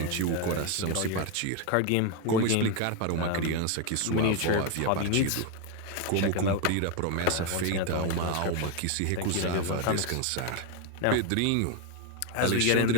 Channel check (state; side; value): different; both; correlation 0.02